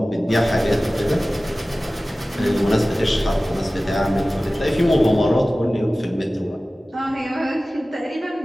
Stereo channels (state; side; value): normal; both; correlation 0.97